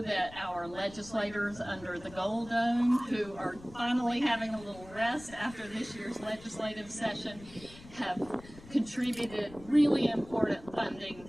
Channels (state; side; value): noise; left; rumble, 19 dB below the sound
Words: that our legislators under the Gold Dome, who are finally having a little rest after this year's legislative session, have contributed really important funding